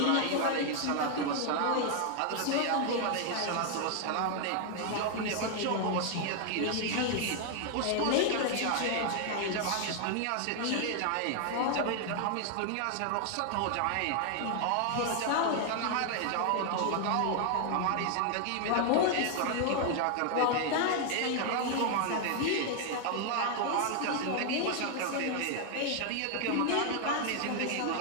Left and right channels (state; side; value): different; both; correlation 0.00